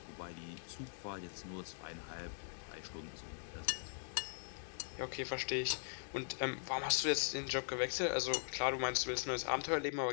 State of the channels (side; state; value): right; silent; digital silence